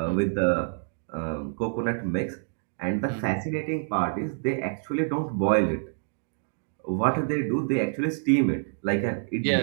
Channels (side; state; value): left; silent; digital silence